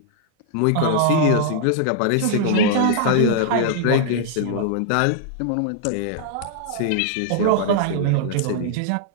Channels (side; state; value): both; different; correlation -0.01